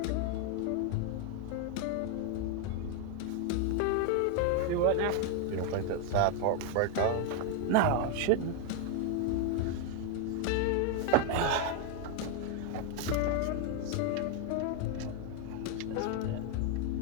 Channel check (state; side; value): different; both; correlation 0.01